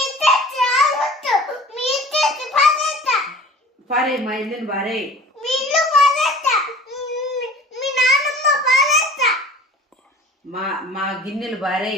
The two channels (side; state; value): both; normal; correlation 0.44